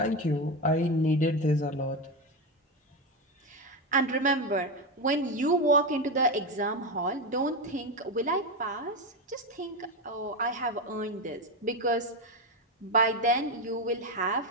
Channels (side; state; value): both; normal; correlation 0.13